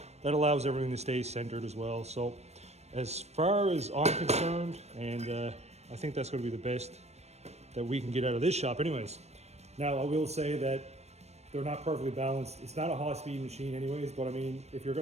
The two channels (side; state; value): left; late; 0.31 ms